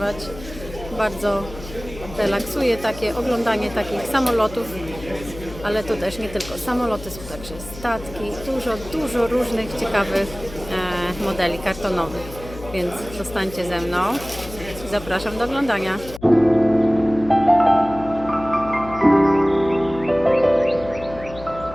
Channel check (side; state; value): left; noise; hum, 15 dB below the sound